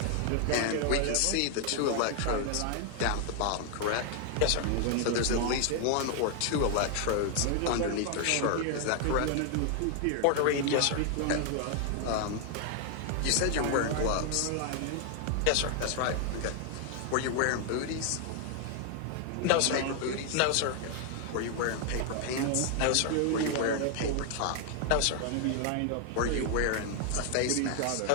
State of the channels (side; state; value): both; different; correlation 0.00